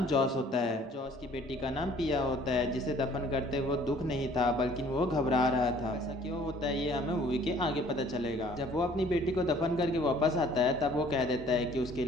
जॉस होता है। जॉस की बेटी का नाम पिया होता है, जिसे दफन करते वो दुख नहीं था बल्कि वो घबरा रहा था। ऐसा क्यों होता है ये हमें मूवी के आगे पता चलेगा। जब वो अपनी बेटी को दफन करके वापस आता है तब वो कह देता है कि उसके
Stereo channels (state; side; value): normal; both; correlation 0.55